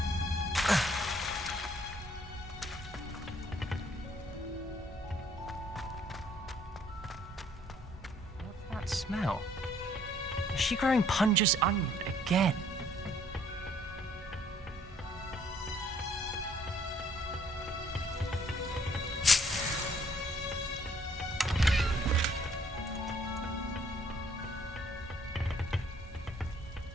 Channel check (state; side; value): normal; both; correlation 0.63